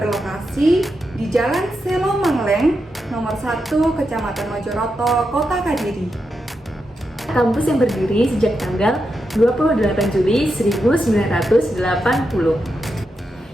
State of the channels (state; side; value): normal; both; correlation 0.86